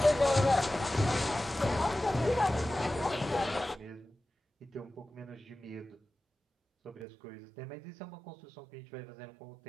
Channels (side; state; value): left; drops out; at 7.1 s